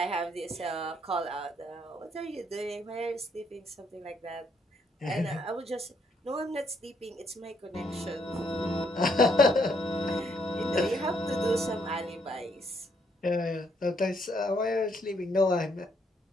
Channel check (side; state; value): both; normal; correlation 0.72